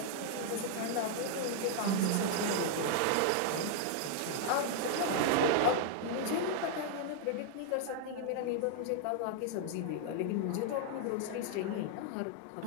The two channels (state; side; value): different; both; correlation 0.00